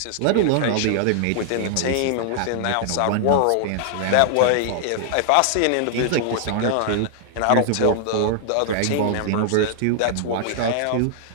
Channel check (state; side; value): different; both; correlation 0.00